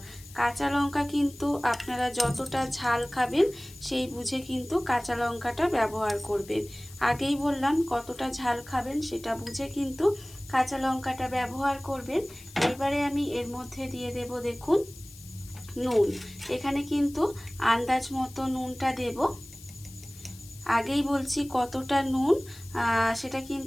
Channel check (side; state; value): left; noise; hiss, 20 dB below the sound